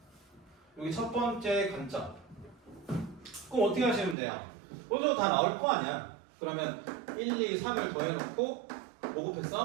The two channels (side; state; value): left; drops out; at 4.2 s